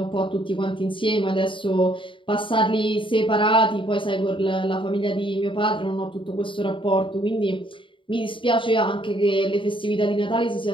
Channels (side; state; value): right; late; 0.25 ms